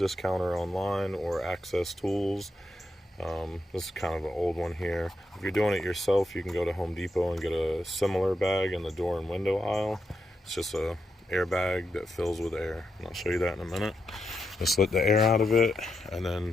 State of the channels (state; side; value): normal; both; correlation 0.84